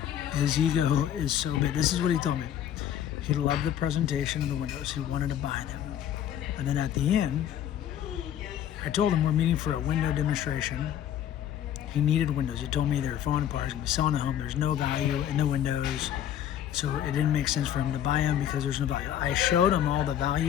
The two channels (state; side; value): quieter; right; 10.5 dB